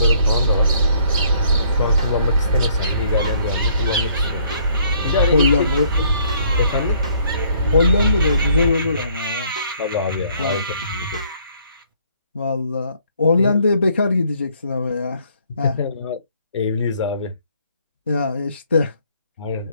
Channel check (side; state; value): both; inverted; correlation -0.63